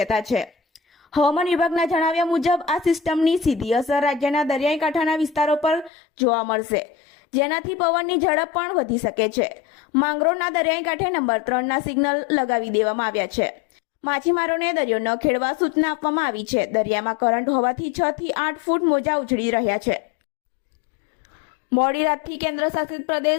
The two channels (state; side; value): drops out; right; at 5.9 s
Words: છે। હવામાન વિભાગના જણાવ્યા મુજબ આ સિસ્ટમની સીધી અસર રાજ્યના દરિયાઈ કાંઠાના વિસ્તારો પર જોવા મળશે, જેનાથી પવનની ઝડપ પણ વધી શકે છે। માંગરોળના દરિયાઈ કાંઠે નંબર 3ના સિગ્નલ લગાવી દેવામાં આવ્યા છે। માછીમારોને દરિયો ન ખેડવા સૂચના આપવામાં આવી છે। દરિયામાં કરંટ હોવાથી 6 થી 8 ફૂટ મોજા ઉછળી રહ્યા છે। મોડી રાતથી કેન્દ્ર શાસિત